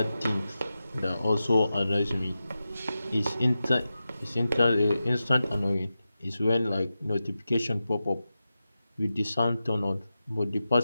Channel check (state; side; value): inverted; both; correlation -0.92